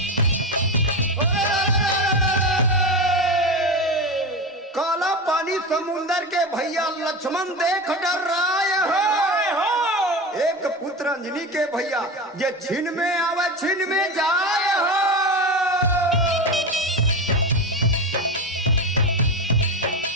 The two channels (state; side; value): normal; both; correlation 0.22